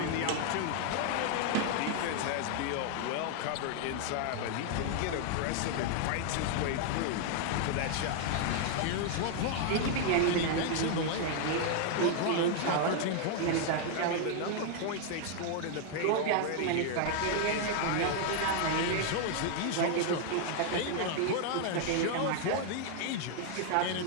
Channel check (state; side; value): different; both; correlation 0.00